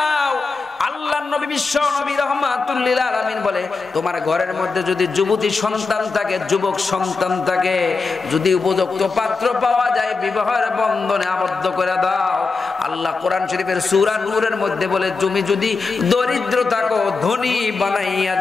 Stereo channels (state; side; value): quieter; right; 4.3 dB